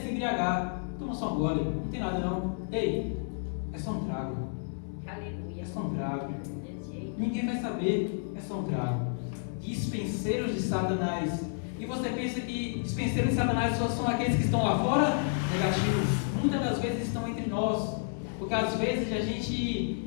embriagar. Toma só um gole, não tem nada não. Ei, é só um trago. Aleluia. É só um trago. Ninguém vai saber. É só um trago. Dispenseiros de Satanás. E você pensa que dispenseiros de Satanás só são aqueles que estão lá fora? Negativos. Muitas das vezes estão entre nós. Porque às vezes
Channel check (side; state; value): right; silent; digital silence